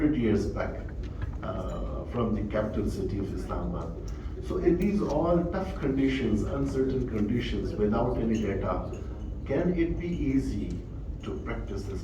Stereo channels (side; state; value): both; identical; correlation 1.00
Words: years back from the capital city of Islamabad. So in these all tough conditions, uncertain conditions, without any data, can it be easy to practice this